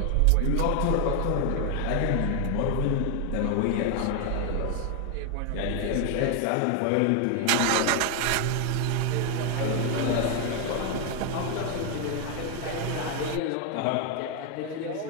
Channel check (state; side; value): different; both; correlation 0.01